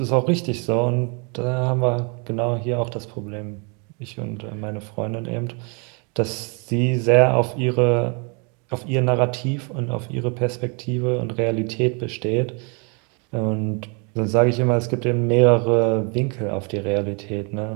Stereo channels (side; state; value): left; quieter; 34.6 dB